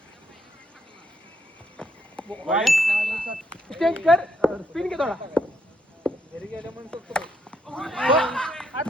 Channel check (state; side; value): normal; both; correlation 0.75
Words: चेंज कर. स्पिन घे थोडा. घरी गेल्या म्हणून शकतो.